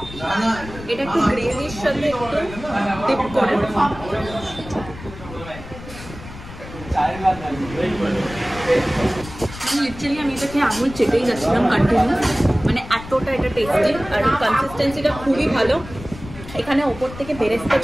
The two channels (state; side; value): noise; left; rumble, 14 dB below the sound